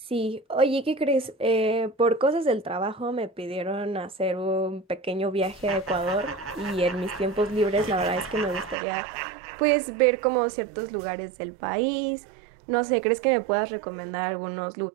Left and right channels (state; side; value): drops out; left; at 8.8 s